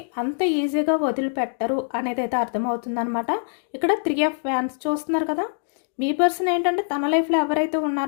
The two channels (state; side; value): silent; right; digital silence